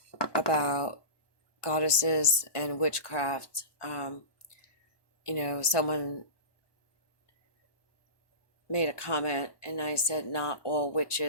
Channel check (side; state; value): right; late; 1.2 ms